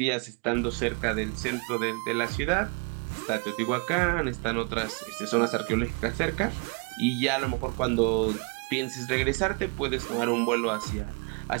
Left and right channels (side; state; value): left; quieter; 33.7 dB